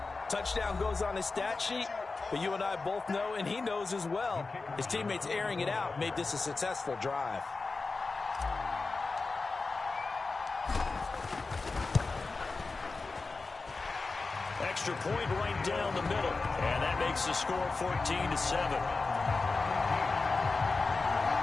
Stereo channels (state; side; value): quieter; right; 3.9 dB